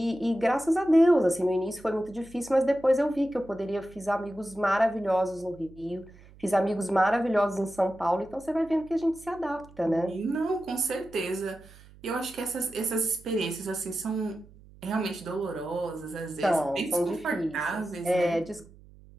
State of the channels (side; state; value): right; noise; hum, 23 dB below the sound